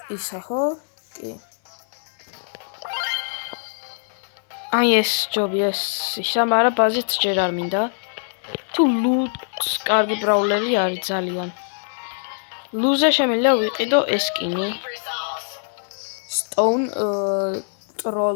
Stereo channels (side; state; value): right; silent; 64 dB below the other